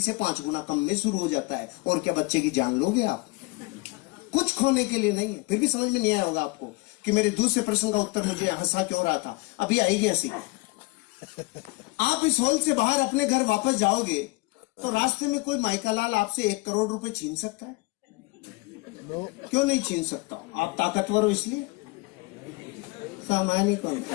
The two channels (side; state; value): right; quieter; 25.1 dB